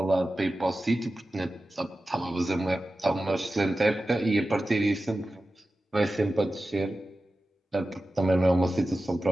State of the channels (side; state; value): both; normal; correlation 0.94